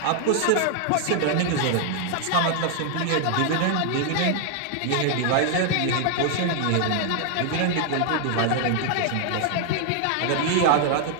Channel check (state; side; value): different; both; correlation 0.00